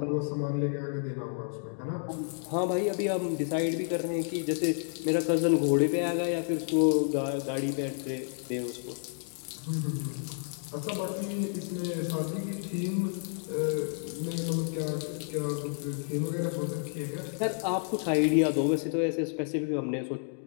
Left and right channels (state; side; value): silent; right; 57 dB below the other